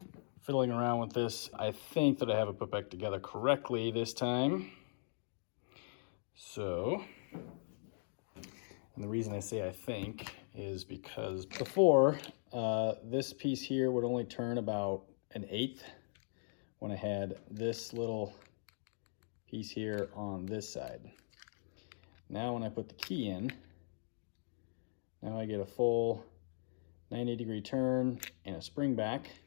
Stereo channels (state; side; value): silent; right; digital silence